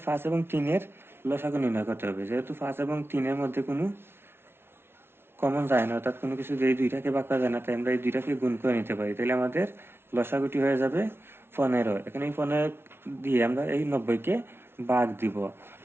5 এবং 3 এর লসাগু নির্ণয় করতে হবে। যেহেতু 5 এবং 3 এর মধ্যে কোনো কমন যায় না, অর্থাৎ কোনো কিছু দিয়ে দুইটাকে ভাগ করা যায় না, তাই আমরা এই দুইটাকে গুণ করে নিতে পারি। তাহলে আমাদের লসাগুটি হয়ে যাবে 15। এখন এই 15 দিয়ে আমরা এই 90-কে ভাগ দিব।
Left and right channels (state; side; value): late; left; 0.12 ms